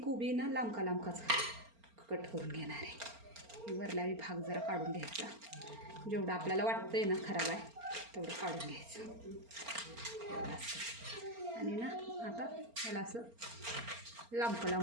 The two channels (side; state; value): left; late; 4.4 ms